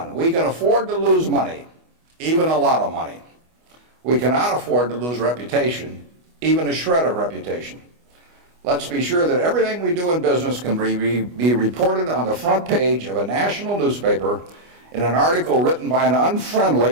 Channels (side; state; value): left; late; 25 ms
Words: we can afford to lose money, even a lot of money. We cannot afford to lose reputation, even a shred of reputation. Let's be sure that everything we do in business can be reported on the front page of a national newspaper in an article written by an